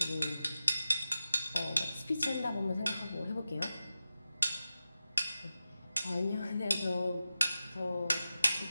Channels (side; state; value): both; inverted; correlation -0.93